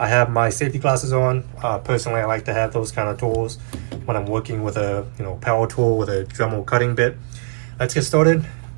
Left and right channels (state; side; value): silent; left; 56 dB below the other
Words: have my safety glasses on. Personally, I like to have those kind of tools when I'm working with a power tool with a Dremel cutting bit. Let's get started.